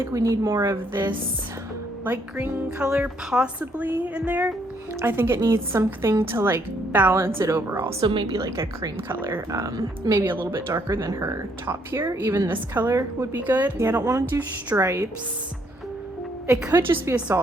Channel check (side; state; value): both; normal; correlation 0.70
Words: we need more of this light green color possibly in there. I think it needs something to like balance it overall. So maybe like a cream color, maybe a little bit darker than her top here. Even this color would be good. Yeah, I don't want to do stripes. It could just be a